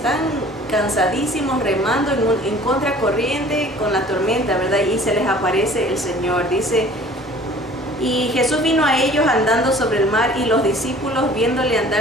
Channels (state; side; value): normal; both; correlation 0.49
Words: cansadísimos remando en contracorriente con la tormenta, ¿verdad? Y se les aparece el Señor. Dice, y Jesús vino a ellos andando sobre el mar, y los discípulos, viéndole